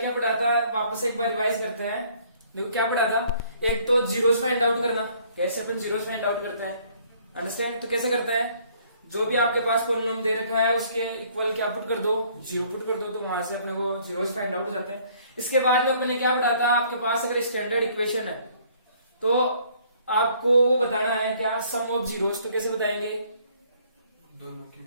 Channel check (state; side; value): inverted; both; correlation -0.60